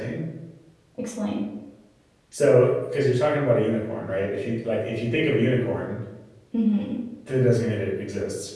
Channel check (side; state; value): both; identical; correlation 1.00